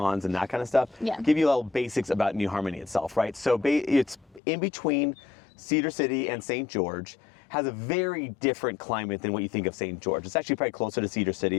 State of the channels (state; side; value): drops out; right; at 4.4 s